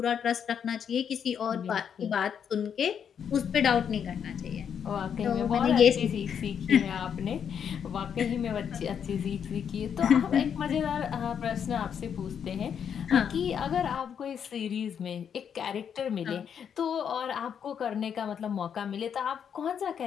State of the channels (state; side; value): quieter; right; 7.9 dB